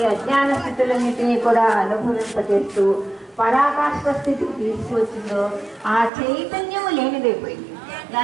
అజ్ఞాన స్థితులన్నిటినీ కూడా అనుభవింపజేస్తూ పరాకాష్ఠ స్థితికి తీసుకొచ్చిందో ఆ చైతన్యము లేనిదైపోయింది.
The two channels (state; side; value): drops out; left; at 6.1 s